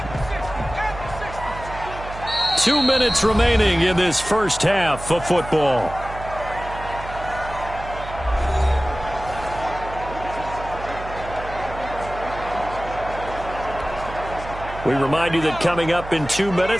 Two minutes remaining in this first half of football. We remind you that coming up in 2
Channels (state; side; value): noise; right; hum, 11 dB below the sound